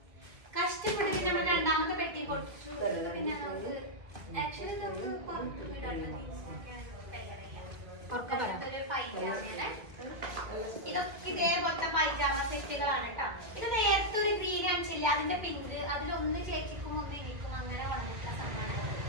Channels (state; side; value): late; left; 1.8 ms